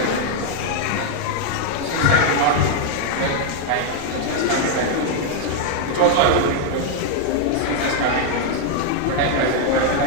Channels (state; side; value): different; both; correlation 0.01